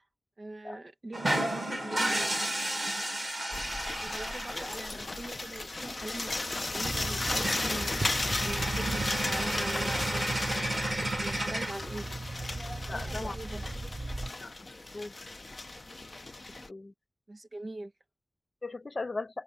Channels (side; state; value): both; normal; correlation 0.94